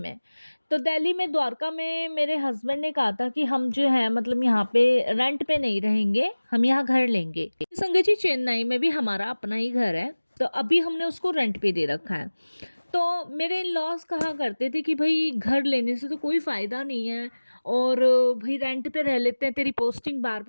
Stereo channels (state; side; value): inverted; both; correlation -1.00